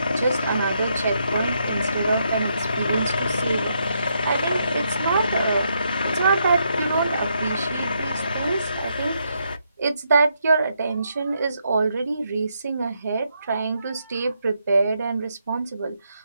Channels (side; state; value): both; inverted; correlation -0.78